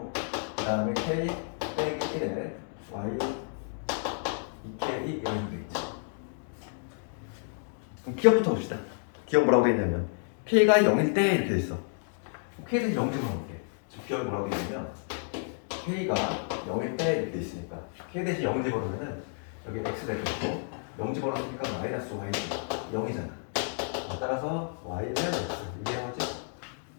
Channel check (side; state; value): right; silent; 57 dB below the other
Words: 그 다음에 k 빼기 1에 y 2k 이런 식으로 돼 있지. 그럼 기억부터 봅시다. 기억 뭐라고 돼 있냐면 k가 0일 때 이렇게 돼 있어. k에서 0 집어넣을게. 기억이 뭐라고 돼 있냐면 k가 0일 때 이렇게 돼 있으니까 k 대신 0 집어넣으면은 여기 x 될 거고 0 집어넣으니까 마이너스 y 0이잖아. 따라서 y는 x 이게 뭐지?